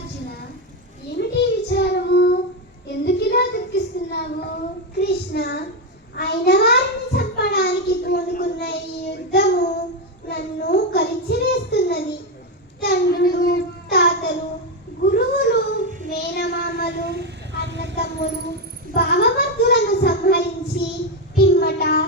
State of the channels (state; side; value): normal; both; correlation 0.08